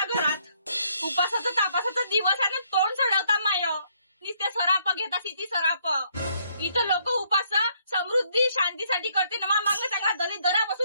घरात. उपासाचा तापासाचा दिवस आहे ना, तोंड चढवता माय. नुसते सराप घेता सिटी सराप. इथं लोक उपास समृद्धी शांतीसाठी करते ना. मागं चांगला दली दरा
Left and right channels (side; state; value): both; inverted; correlation -0.69